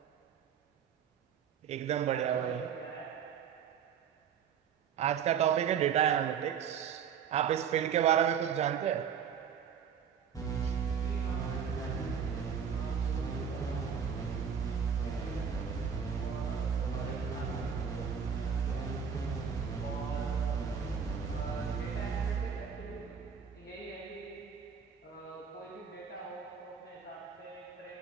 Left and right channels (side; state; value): left; quieter; 7.4 dB